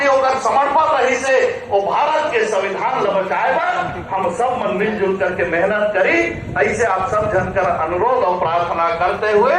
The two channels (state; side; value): identical; both; correlation 1.00